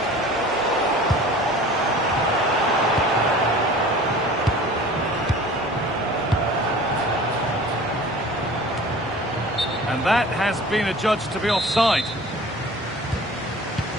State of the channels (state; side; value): normal; both; correlation 0.43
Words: And that has been adjudged to be offside.